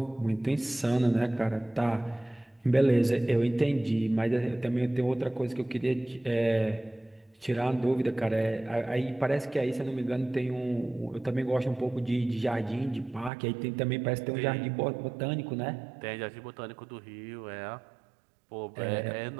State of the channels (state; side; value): drops out; left; at 13.3 s